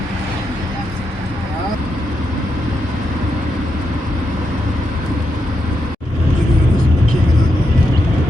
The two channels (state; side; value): normal; both; correlation 0.83